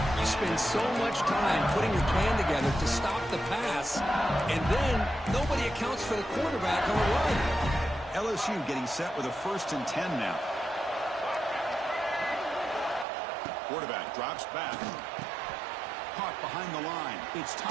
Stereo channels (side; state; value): left; drops out; at 13.1 s